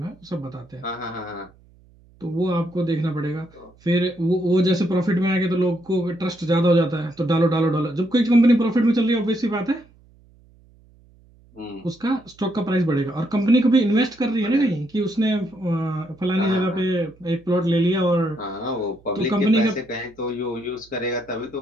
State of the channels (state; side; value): noise; right; hum, 29 dB below the sound